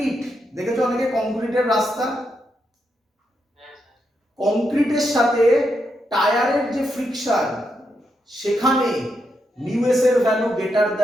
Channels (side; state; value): both; normal; correlation 0.82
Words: দেখেছো অনেকে কংক্রিটের রাস্তা, কংক্রিটের সাথে টায়ারের যে ফ্রিকশন সেখানে মিউ এস এর ভ্যালু গ্রেটার